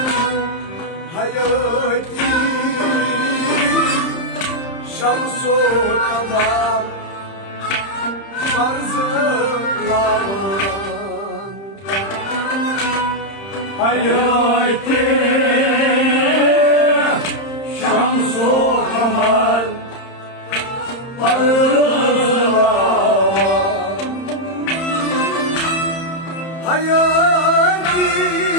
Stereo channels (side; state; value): right; late; 30 ms